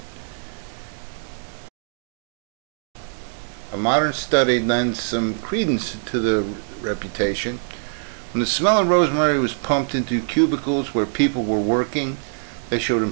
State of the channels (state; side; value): silent; left; digital silence